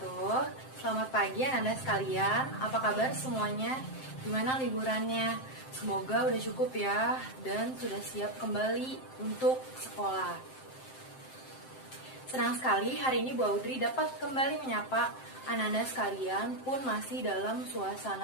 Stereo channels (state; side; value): late; right; 7.7 ms